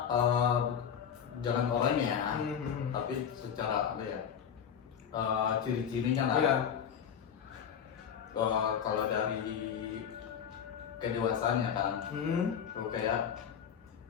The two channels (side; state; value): right; quieter; 8.0 dB